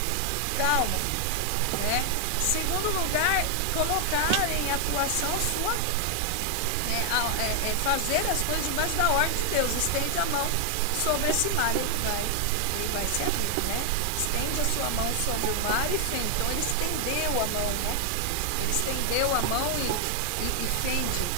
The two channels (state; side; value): different; both; correlation 0.00